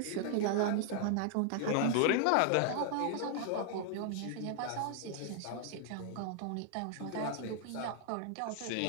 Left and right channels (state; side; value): different; both; correlation 0.00